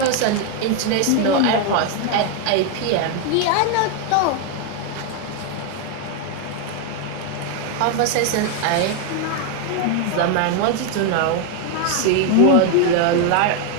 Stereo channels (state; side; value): different; both; correlation 0.01